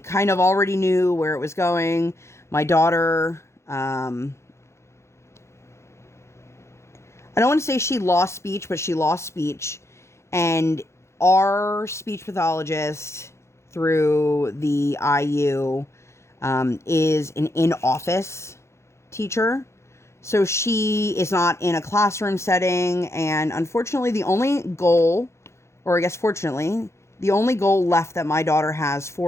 of already knew where it was going. My daughter, I don't want to say she lost speech, but she lost speech. And our speech pathologist through the IU is an in-office teacher. So she is not in a classroom setting. And unfortunately, the only goal, or I guess fortunately, the only goal left that my daughter has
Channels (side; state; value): right; late; 0.13 ms